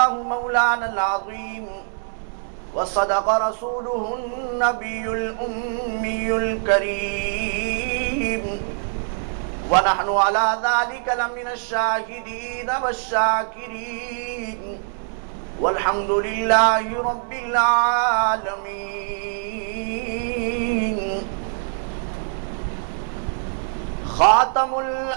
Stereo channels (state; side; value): silent; left; digital silence